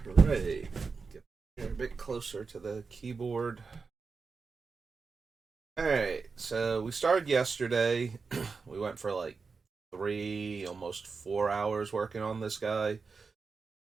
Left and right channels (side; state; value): left; quieter; 4.8 dB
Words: Hooray. Get here a bit closer to the keyboard. Alright, so we started yesterday. We went for like almost 4 hours working on this guy.